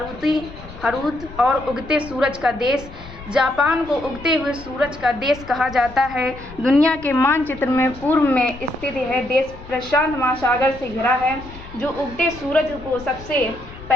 हरूत और उगते सूरज का देश। जापान को उगते हुए सूरज का देश कहा जाता है। दुनिया के मानचित्र में पूर्व में स्थित यह देश प्रशांत महासागर से घिरा है, जो उगते सूरज को सबसे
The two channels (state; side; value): noise; left; rumble, 16 dB below the sound